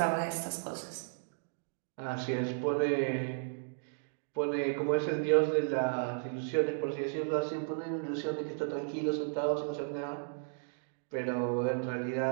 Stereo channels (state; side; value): silent; left; digital silence